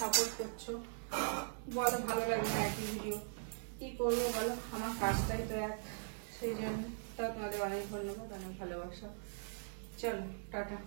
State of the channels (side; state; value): left; silent; digital silence